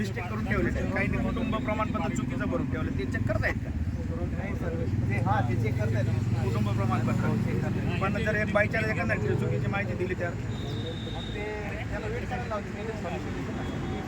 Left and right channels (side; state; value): both; identical; correlation 1.00